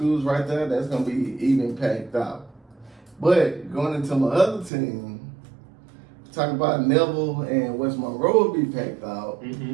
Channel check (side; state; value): left; drops out; at 4.7 s